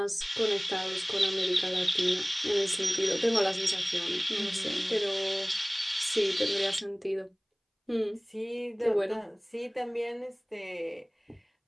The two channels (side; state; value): both; identical; correlation 1.00